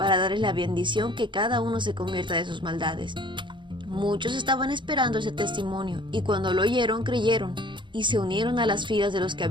darles la bendición que cada uno se convierta de sus maldades». Muchos estaban esperando ese testimonio, y cuando lo oyeron, creyeron, y se unieron a las filas de los que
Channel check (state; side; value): late; left; 0.23 ms